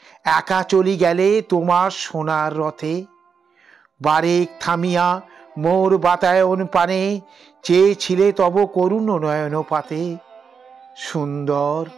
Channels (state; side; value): quieter; left; 6.1 dB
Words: একা চলি গেলে তোমার সোনার রথে। বারেক থামিয়া মোর বাতায়ন পানে, চেয়েছিলে তব করুণ নয়ন পাতে। সুন্দর,